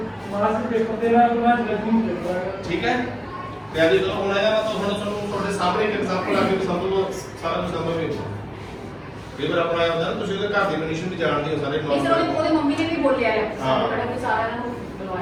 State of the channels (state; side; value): identical; both; correlation 1.00